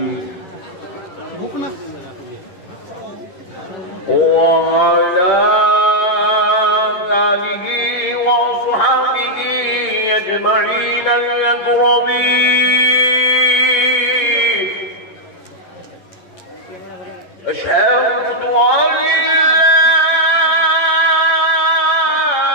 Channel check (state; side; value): late; right; 10 ms